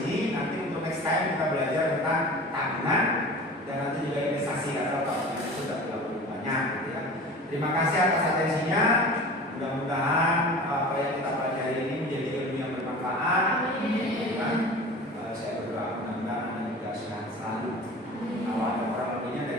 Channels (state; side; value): normal; both; correlation 0.38